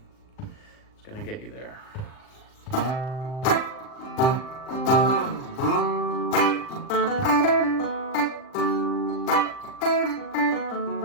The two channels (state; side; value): late; right; 39 ms